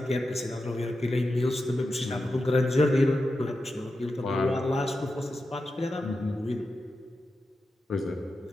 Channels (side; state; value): both; normal; correlation 0.90